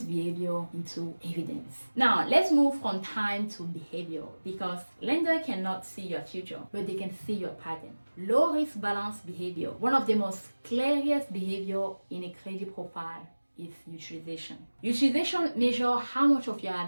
behavior into evidence. Now, let's move from time to behavior because lenders cannot see your future, but they can see your pattern. Low risk balanced behavior. One of the most clearest behavior in a credit profile is utilization. Utilization measures how much of your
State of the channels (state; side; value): inverted; both; correlation -1.00